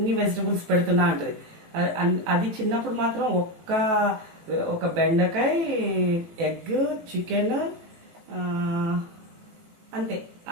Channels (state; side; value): late; left; 18 ms